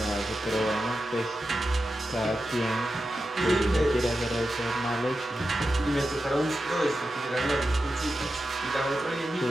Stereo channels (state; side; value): normal; both; correlation 0.90